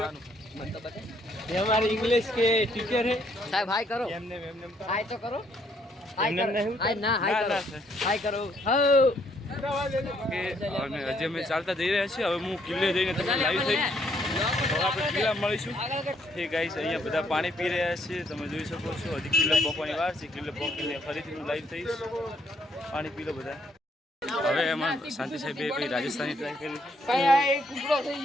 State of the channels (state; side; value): normal; both; correlation 0.70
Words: ये हमारे इंग्लिश के टीचर है साहब हाय करो हाय तो करो हाय ना हाय करो અને હજી અમે ચાલતા જઈ રહ્યા છીએ હવે હું કિલ્લે જઈને તમને લાઈવ થઈ હવે આપણે કિલ્લા મળીશું એ ગાઈસ અહીંયા બધા પાણી પી રહ્યા છે તમે જોઈ શકો છો હજી કિલ્લો પોકવાની વાર છે કિલ્લો પોકીને ફરીથી હું લાઈવ થઈશ પાણી પી લો બધા હવે એમાં શાંતિ સાહેબે કોઈ રાજસ્થાની ટ્રાય કરી